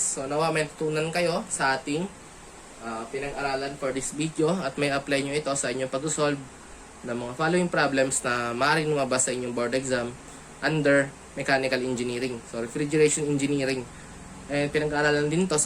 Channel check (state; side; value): identical; both; correlation 1.00